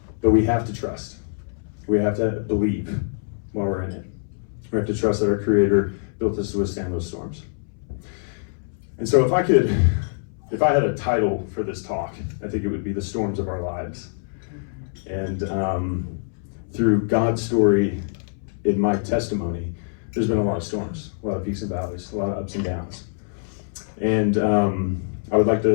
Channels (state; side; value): silent; right; 62 dB below the other